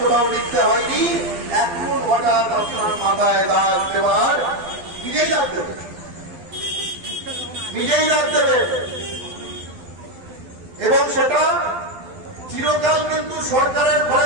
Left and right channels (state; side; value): late; left; 12 ms